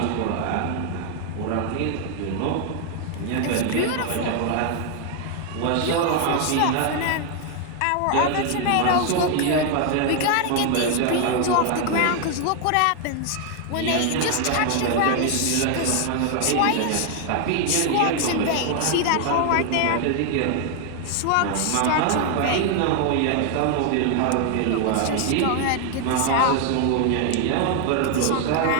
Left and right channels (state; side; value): different; both; correlation 0.00